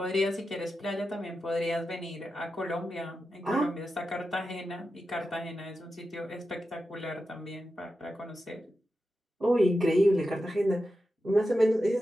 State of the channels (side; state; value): both; normal; correlation 0.90